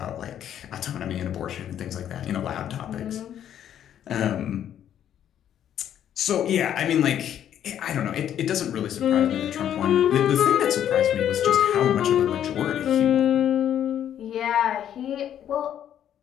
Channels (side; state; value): right; quieter; 10.2 dB